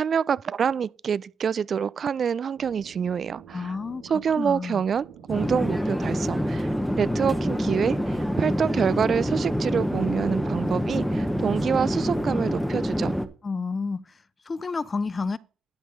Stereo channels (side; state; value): left; quieter; 3.2 dB